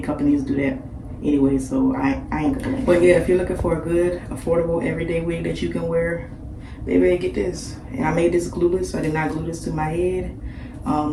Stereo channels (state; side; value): identical; both; correlation 1.00